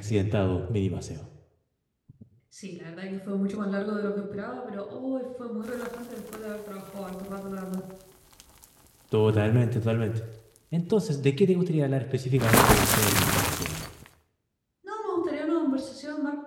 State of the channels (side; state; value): both; identical; correlation 1.00